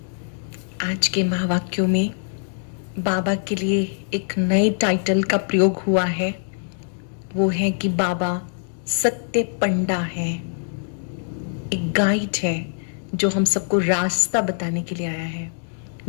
आज के महावाक्यों में बाबा के लिए एक नए टाइटल का प्रयोग हुआ है। वो है कि बाबा सत्य पंडा है, एक गाइड है जो हम सबको रास्ता बताने के लिए आया है।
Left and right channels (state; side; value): silent; right; digital silence